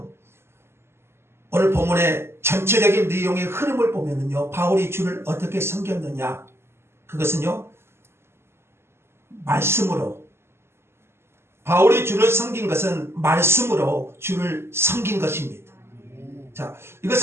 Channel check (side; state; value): left; late; 0.12 ms